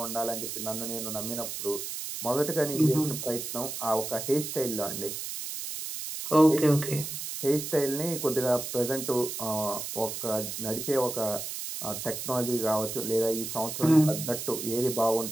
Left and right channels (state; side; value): noise; right; hiss, 6 dB below the sound